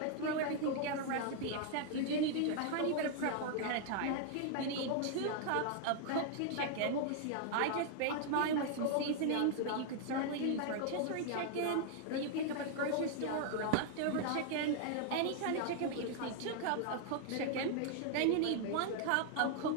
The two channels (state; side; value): different; both; correlation 0.00